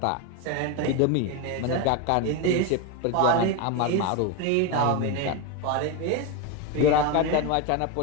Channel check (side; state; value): both; different; correlation 0.03